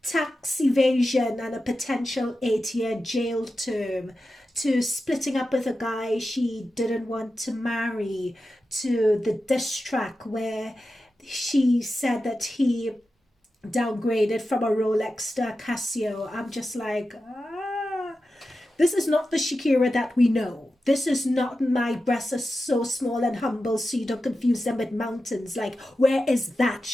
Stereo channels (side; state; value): both; normal; correlation 0.92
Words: tax evasion and a potential 8-year jail term to splitting up with a guy she didn't want to marry to the diss track where she said that he downgraded from a Rolex to a Casio. I'm just like, this is not the Shakira that we know. This is not my breasts are so small and humble so you don't confuse them with mountains. Like, where is that